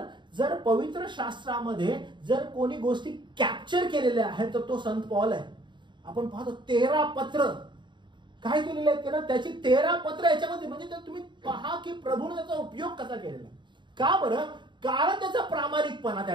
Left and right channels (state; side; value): late; left; 0.23 ms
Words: जर पवित्र शास्त्रामध्ये जर कोणी गोष्टी कॅप्चर केलेल्या आहेत तर तो संत पॉल आहे. आपण पाहतो 13 पत्र काय केलेले आहेत त्यानं, त्याची 13 पत्र याच्यामध्ये. म्हणजे तुम्ही पहा की प्रभूने त्याचा उपयोग कसा केलेला. का बरं? कारण त्याचा प्रामाणिकपणा त्या